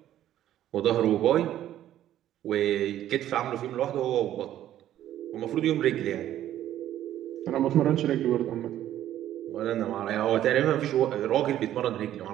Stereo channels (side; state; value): left; quieter; 12.2 dB